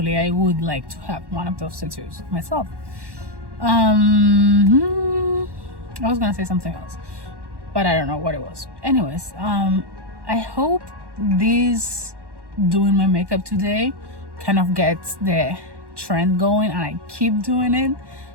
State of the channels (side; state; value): left; late; 1.1 ms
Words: I would like to have one of those tattoos myself. I was gonna say something else, but I don't know what it was. Anyways, I hope this doing my makeup today kind of gets the trend going, and I keep doing it.